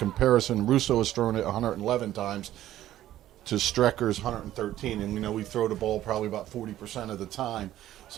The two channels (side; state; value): left; quieter; 13.3 dB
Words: Russo has thrown it 111 times to Strecker's 113. And, we throw the ball probably about 40% of the time.